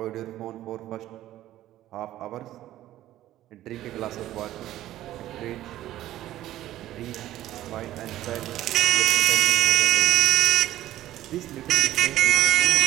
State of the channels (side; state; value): left; quieter; 14.0 dB